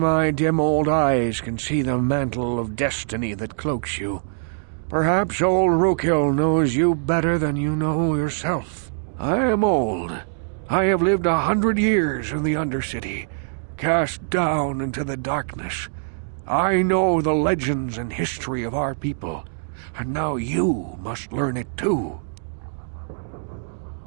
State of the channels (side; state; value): left; silent; digital silence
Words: dim old eyes can see the mantle of destiny that cloaks you. Perhaps old Rookhill knows you better than you know yourself. I am old. I have lived 100 years in the Undercity, cast down into the darkness. I know the legends and history of our people, and now you must learn it too.